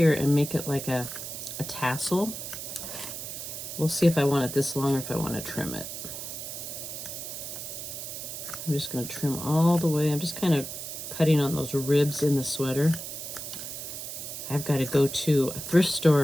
and make it like a tassel. We'll see if I want it this long or if I want to trim it. I'm just going to trim all the way. I'm just kind of cutting on those ribs in the sweater. I've got to go to a thrift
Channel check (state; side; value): noise; right; hiss, 8 dB below the sound